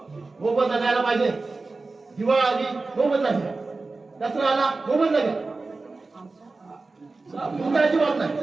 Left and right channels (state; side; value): quieter; left; 3.6 dB